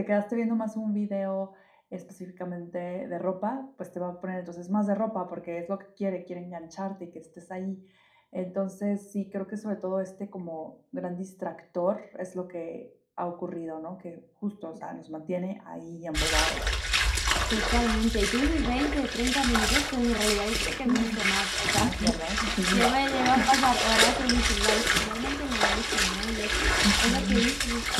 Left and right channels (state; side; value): identical; both; correlation 1.00